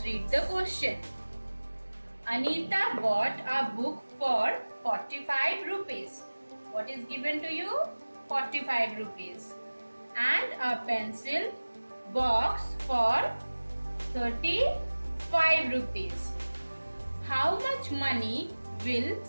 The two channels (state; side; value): inverted; both; correlation -1.00